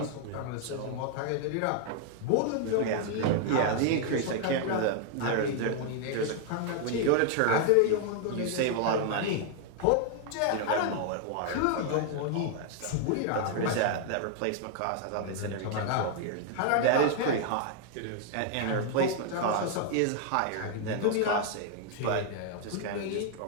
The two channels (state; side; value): different; both; correlation 0.00